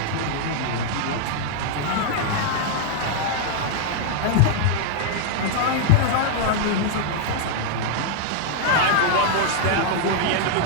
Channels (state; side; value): different; both; correlation -0.01